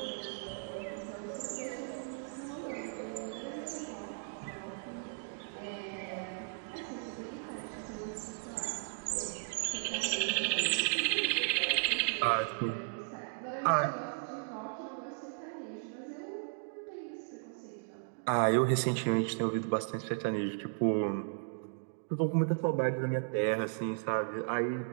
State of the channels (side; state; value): left; silent; digital silence